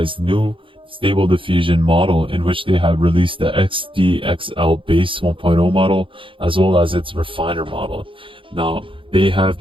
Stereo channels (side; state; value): left; late; 0.25 ms